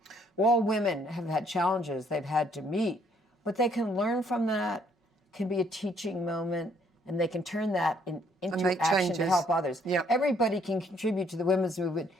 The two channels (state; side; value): normal; both; correlation 0.66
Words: All women have had challenges they've had to meet, but they can learn from that, can be a teaching moment, and they can turn that into action to help others. Yep. Everybody can contribute to the women's movement